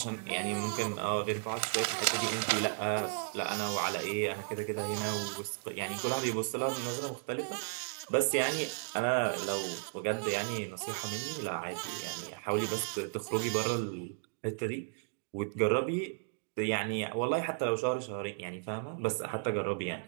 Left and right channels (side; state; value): left; silent; digital silence